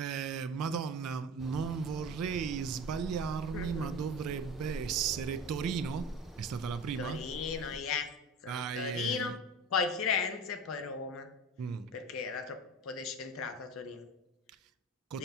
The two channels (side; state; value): both; normal; correlation 0.33